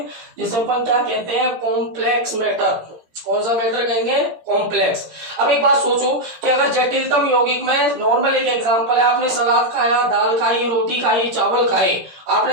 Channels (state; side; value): late; left; 17 ms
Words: जिसे अपन क्या कहते हैं, कॉम्प्लेक्स मैटर। कौन सा मैटर कहेंगे, कॉम्प्लेक्स। अब एक बात सोचो कि अगर जटिलतम यौगिक में, नॉर्मल एक एग्जांपल है, आपने सलाद खाया, दाल खाई, रोटी खाई, चावल खाए,